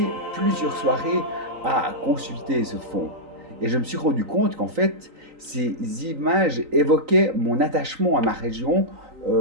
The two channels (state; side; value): late; left; 3.9 ms